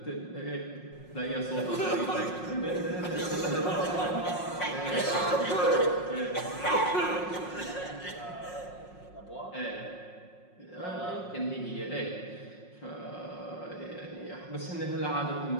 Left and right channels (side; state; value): right; late; 5.5 ms